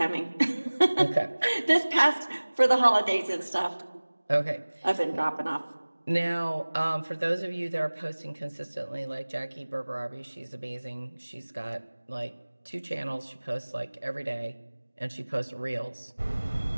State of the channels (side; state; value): both; inverted; correlation -1.00